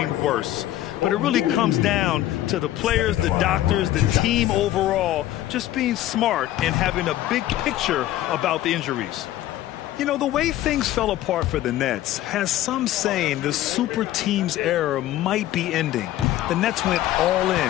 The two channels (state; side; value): quieter; right; 14.0 dB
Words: worse. But it really comes down to the players, the doctors, the team overall, just being smart and having a big picture about the injuries. You know, the way things fell apart for the Nets has some saying the super team's era might be ending. The Nets went all in